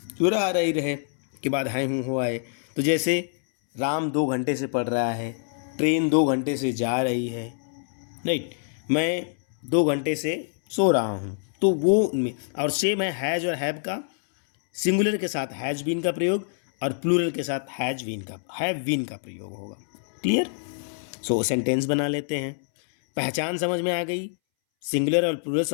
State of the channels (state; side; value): silent; right; 61 dB below the other